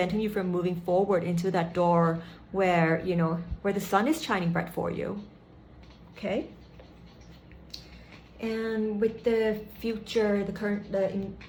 you from moving forward into that door where, you know, where the sun is shining bright for you. Okay? And with the future, the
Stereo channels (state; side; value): identical; both; correlation 1.00